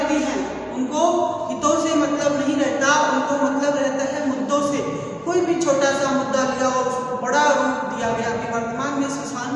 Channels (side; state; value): both; identical; correlation 1.00